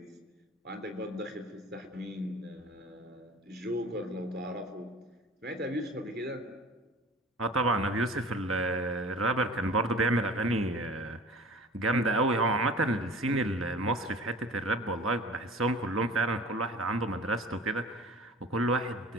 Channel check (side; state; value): both; normal; correlation 0.42